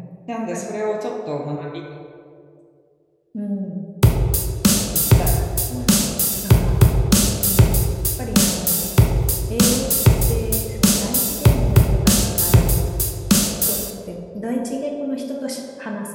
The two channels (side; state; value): both; identical; correlation 1.00